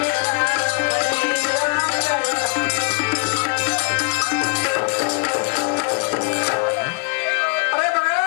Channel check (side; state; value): right; quieter; 34.7 dB